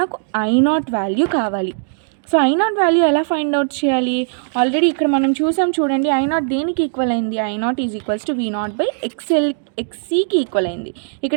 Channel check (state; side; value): silent; left; digital silence